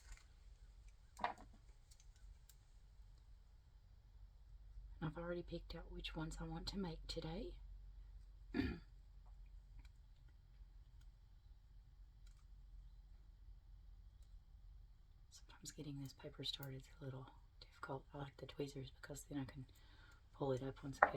I've already picked out which ones I want to make today. Sometimes getting this paper started is a little difficult. I like the tweezers because then I can pull it up once I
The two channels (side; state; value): both; identical; correlation 1.00